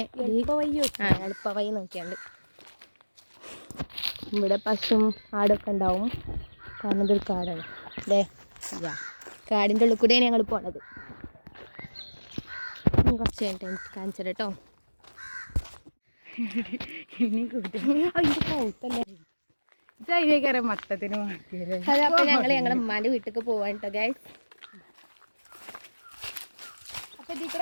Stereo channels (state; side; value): inverted; both; correlation -1.00